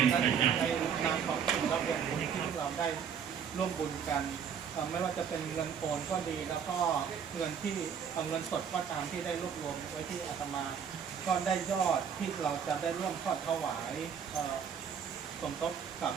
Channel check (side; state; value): left; quieter; 7.5 dB